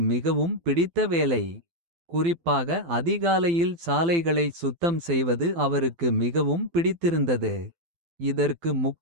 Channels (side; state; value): left; late; 12 ms